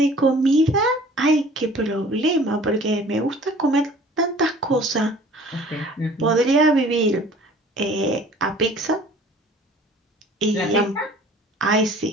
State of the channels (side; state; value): both; normal; correlation 0.49